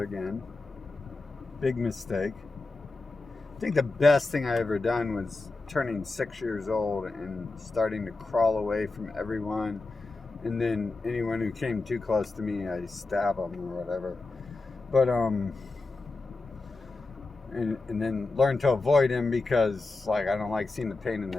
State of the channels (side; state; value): right; quieter; 3.5 dB